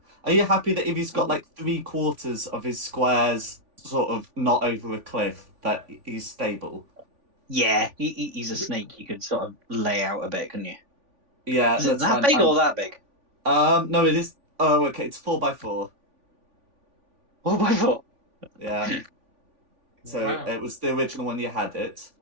Are you happy that if he's got like 3/4 of his squares sort of not over a cliff, that he's stable? Yeah, he's a snake. You could sort of lay out a bit, couldn't you? Yeah, Is it that's that fine. big or that big? No, it is. Oh, okay. It's 4x4. 4x4. Yeah. So Wow. it was the original one you had it.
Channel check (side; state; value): left; late; 3.5 ms